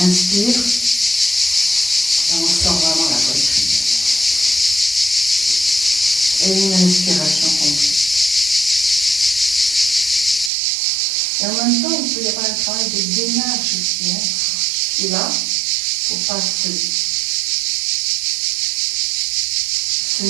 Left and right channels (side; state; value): left; drops out; at 10.5 s